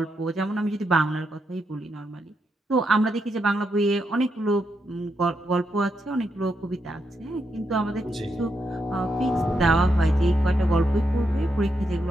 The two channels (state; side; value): normal; both; correlation 0.82